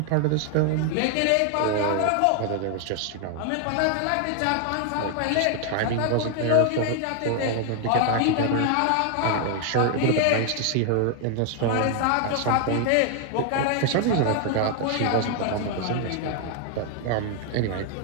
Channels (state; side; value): different; both; correlation 0.00